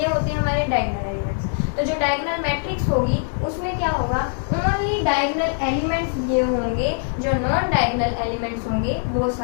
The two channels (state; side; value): silent; right; 60 dB below the other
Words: होते हैं हमारे डायगोनल एलिमेंट्स। तो जो डायगोनल मैट्रिक्स होगी उसमें क्या होगा, ओनली डायगोनल एलिमेंट्स ये होंगे, जो नॉन डायगोनल एलिमेंट्स होंगे वो